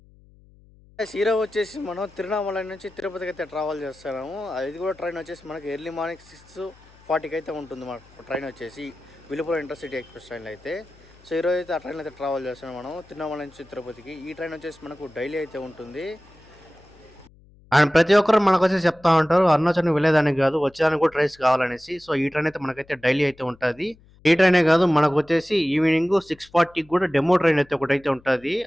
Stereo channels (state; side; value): noise; left; hum, 27 dB below the sound